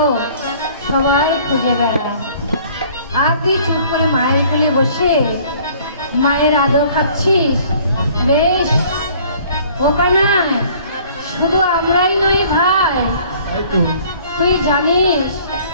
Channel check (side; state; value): both; inverted; correlation -0.54